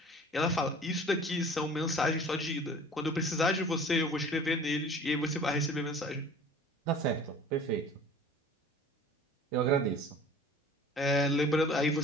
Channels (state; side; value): normal; both; correlation 0.45